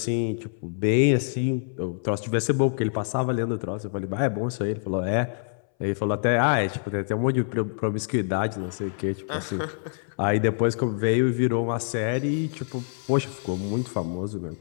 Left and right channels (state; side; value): silent; right; 61 dB below the other